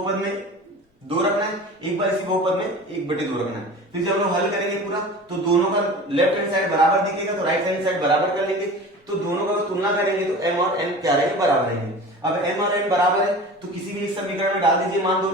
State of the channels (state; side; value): normal; both; correlation 0.37